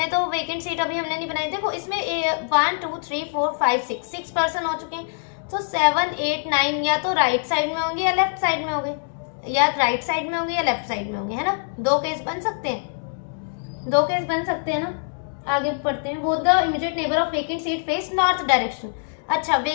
तो वेकेंट सीट अभी हमने नहीं बनाई, देखो इसमें 1 2 3 4 5 6 पर्सन हो चुके हैं, तो 7 8 9 या तो राइट साइड में होंगे या लेफ्ट साइड में होंगे, या राइट साइड में होंगे या लेफ्ट साइड में होंगे, है ना। दो केस बन सकते हैं, दो केस बन सकते हैं ना। आगे पढ़ते हैं। Both the immediate neighbour of vacant seat face north direction. अच्छा,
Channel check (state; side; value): silent; right; digital silence